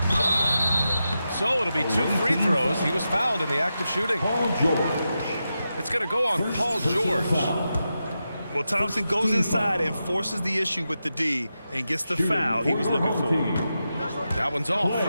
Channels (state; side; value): inverted; both; correlation -0.89